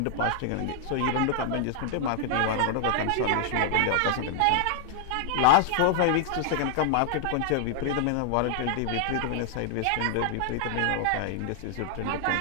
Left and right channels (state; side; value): different; both; correlation -0.01